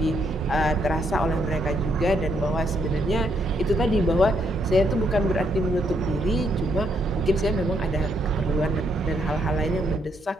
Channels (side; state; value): both; normal; correlation 0.74